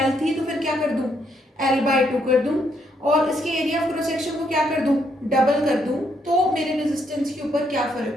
L थी तो फिर क्या कर दूं? L/2 कर दूं और इसके एरिया ऑफ क्रॉस सेक्शन को क्या कर दूं? डबल कर दूं, तो मेरे रेजिस्टेंस के ऊपर क्या फर्क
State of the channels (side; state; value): both; normal; correlation 0.74